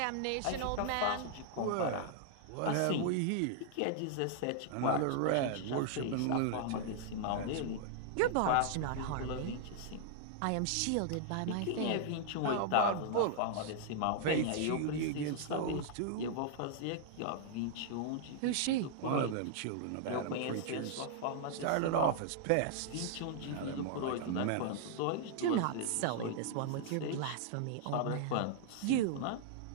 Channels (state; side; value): different; both; correlation -0.01